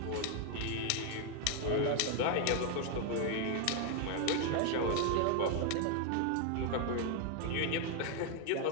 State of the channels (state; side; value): different; both; correlation 0.01